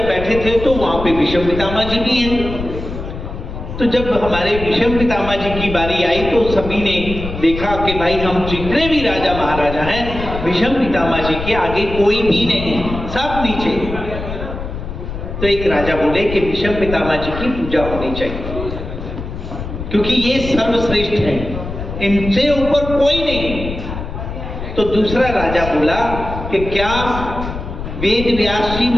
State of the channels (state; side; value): noise; left; rumble, 8 dB below the sound